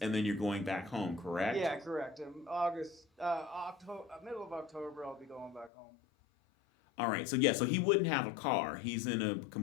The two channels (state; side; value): drops out; right; at 5.7 s